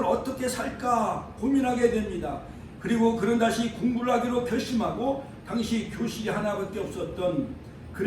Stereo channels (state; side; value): identical; both; correlation 1.00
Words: 어떻게 살까 고민하게 됩니다. 그리고 그는 다시 공부를 하기로 결심하고 당시 교실이 하나밖에 없었던